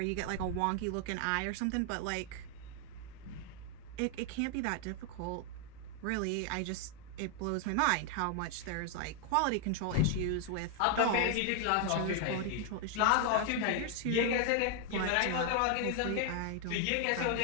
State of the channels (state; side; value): different; both; correlation 0.00